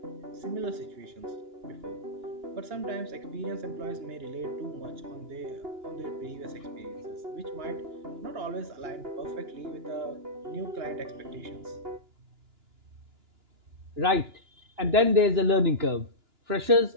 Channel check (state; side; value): late; left; 2.9 ms